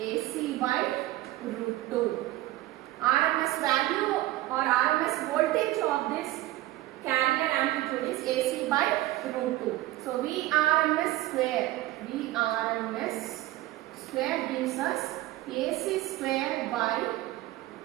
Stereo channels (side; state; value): left; quieter; 16.6 dB